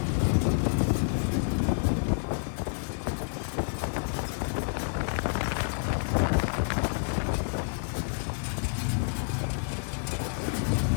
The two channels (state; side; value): silent; right; digital silence